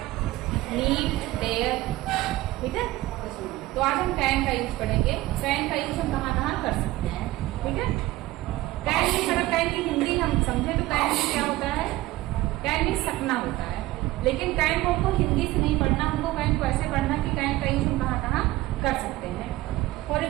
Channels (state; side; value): quieter; left; 17.6 dB